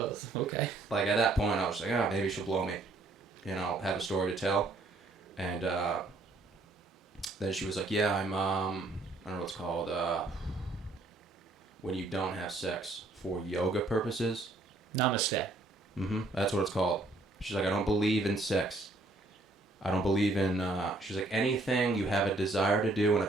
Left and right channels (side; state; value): left; quieter; 3.0 dB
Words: okay. Like, at that point, I was like, maybe she'll blow me. You know, have a story to tell. And then she was like, "Yeah, I'm, I don't know what it's called, when you don't have sex for yoga purposes." Namaste. Mm-hmm. That's what it's called. She's like, "I don't believe in sex. I don't believe in," she's like, "anything you have a desire to do and a